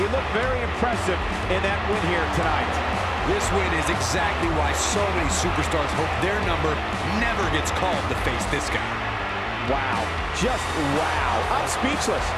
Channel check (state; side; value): identical; both; correlation 1.00